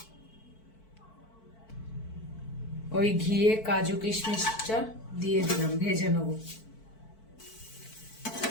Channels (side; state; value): right; late; 4.5 ms